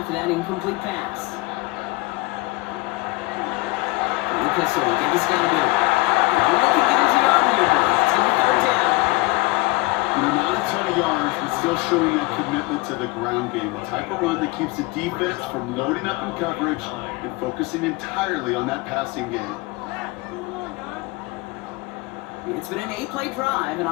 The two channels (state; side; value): quieter; right; 22.8 dB